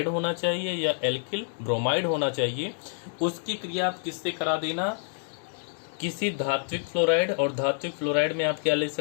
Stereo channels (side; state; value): right; silent; digital silence